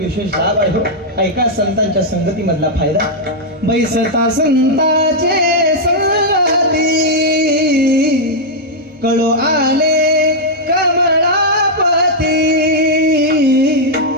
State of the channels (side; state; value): both; normal; correlation -0.04